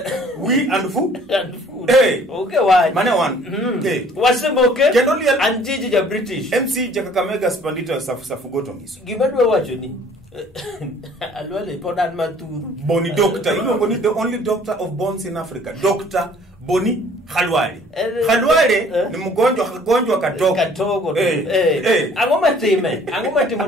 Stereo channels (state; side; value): normal; both; correlation 0.55